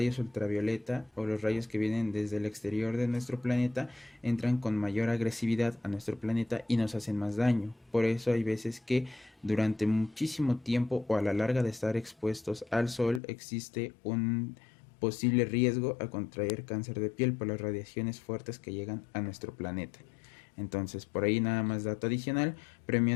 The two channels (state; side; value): drops out; right; at 13.2 s